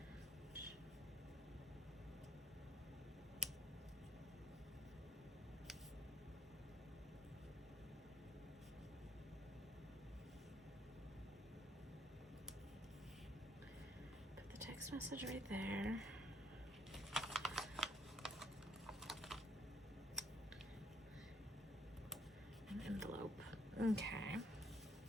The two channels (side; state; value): both; normal; correlation 0.67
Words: Put the text message right there. Envelope. Okay.